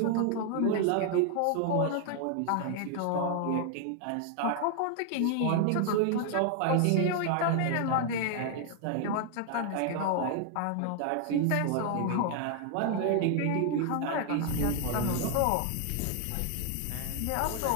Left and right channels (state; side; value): different; both; correlation 0.00